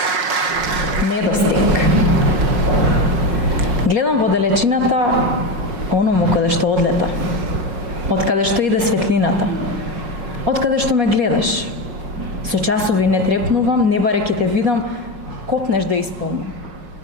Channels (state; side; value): late; left; 5.5 ms